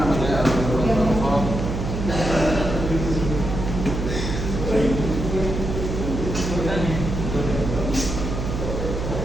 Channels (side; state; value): right; noise; hum, 4 dB below the sound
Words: nama saya Abdullah.